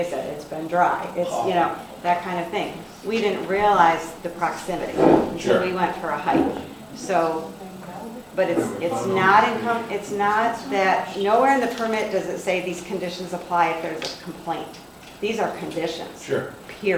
said, it's been dry. It's, you know, that kind of thing. We didn't realize the proximity until Sure. we went for a hike. So, but it's not that, nowhere in the permit does it say these conditions apply if there's a complaint. These are conditions. Sure.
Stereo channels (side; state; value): both; identical; correlation 1.00